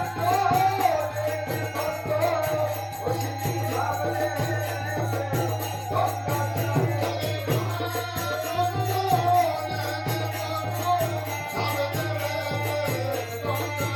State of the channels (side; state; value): both; identical; correlation 1.00